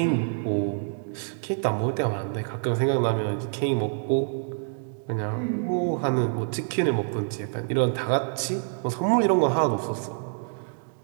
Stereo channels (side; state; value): left; silent; digital silence